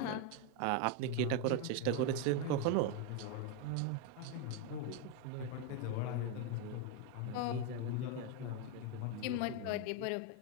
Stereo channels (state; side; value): different; both; correlation 0.01